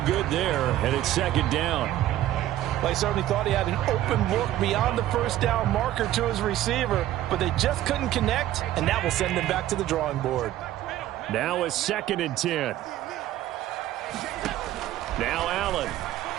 good there, and it's 2nd down. Well, he certainly thought he had an open look beyond the first down marker to his receiver, but they just couldn't connect, and that will send them back to the drawing board. Now a 2nd and 10. Now Allen.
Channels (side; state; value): left; quieter; 13.6 dB